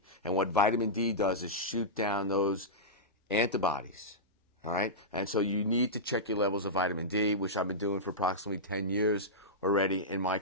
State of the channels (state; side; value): normal; both; correlation -0.13